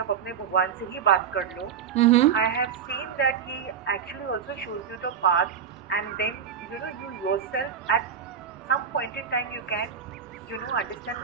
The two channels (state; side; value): quieter; left; 7.5 dB